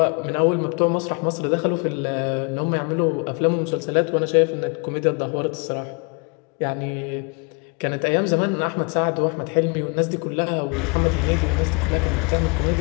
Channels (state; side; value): quieter; right; 33.0 dB